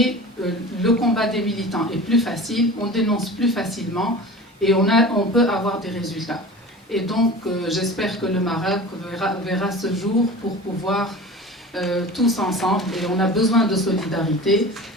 le combat des militants est plus facile, on dénonce plus facilement et on peut avoir des résultats. Et donc j'espère que le Maroc verra ce jour pour pouvoir tous ensemble, et on a besoin de solidarité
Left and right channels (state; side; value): normal; both; correlation 0.36